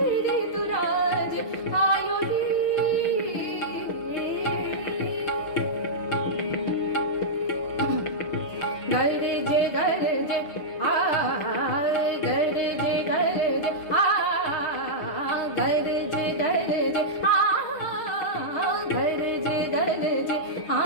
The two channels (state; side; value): late; right; 6.3 ms